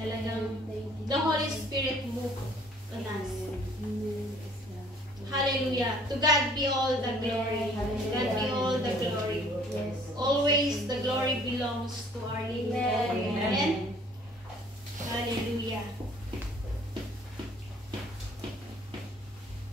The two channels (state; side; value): normal; both; correlation 0.57